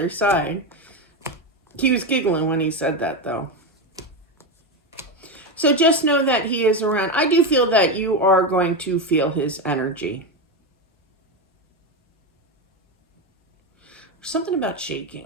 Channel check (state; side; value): normal; both; correlation 0.13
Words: side. He was giggling when he said that, though. So just know that he is around. I do feel that you are going to feel his energy. Something about